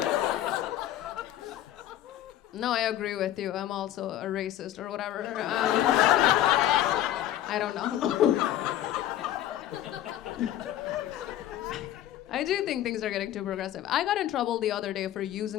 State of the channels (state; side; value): quieter; right; 12.6 dB